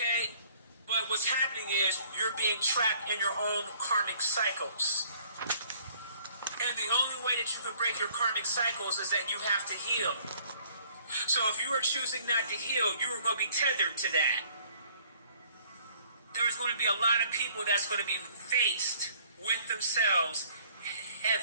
But what's happening is you're being trapped in your own karmic cycles. And the only way that you can break your karmic cycles is that you have to heal. So if you are choosing not to heal, you are going to be tethered to that. There is going to be a lot of people that's going to be faced with themselves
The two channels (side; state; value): both; inverted; correlation -0.58